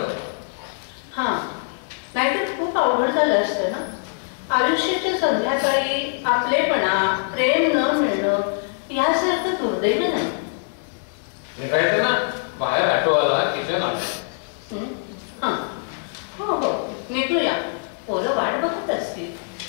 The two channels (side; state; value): right; silent; digital silence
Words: हा, नाहीतर खूप अवघड झालं असतं ना. आयुष्याच्या संध्याकाळी आपलेपणा, प्रेम न मिळणं यासारखं दुर्दैव नाही. निघायचं ना बाहेर ऑटोवाला किचन आलं. हा, हो निघूया. पोरं वाट बघत असतील.